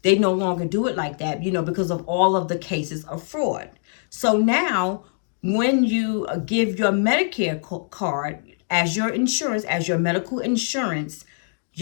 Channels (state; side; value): silent; right; digital silence